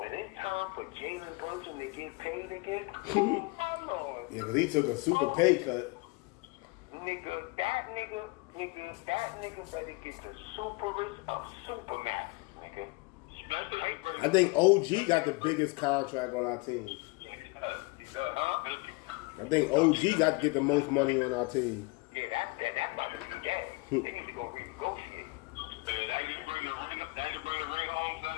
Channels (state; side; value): quieter; right; 25.7 dB